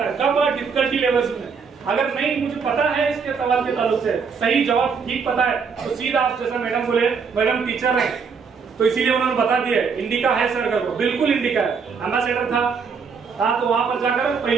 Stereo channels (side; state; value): left; quieter; 5.7 dB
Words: है। कब डिफिकल्टी लेवल्स में, अगर नहीं मुझे पता है इसके सवाल के ताल्लुक से सही जवाब ठीक पता है तो सीधा आप जैसा मैडम बोले, मैडम टीचर है तो इसीलिए उन्होंने बता दिया इंडिका है सर कर को, बिल्कुल इंडिका है। एम्बेसडर था तो वहां पर जाकर